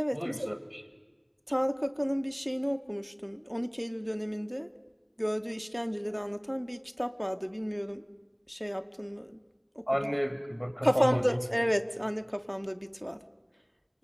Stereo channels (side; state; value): both; identical; correlation 1.00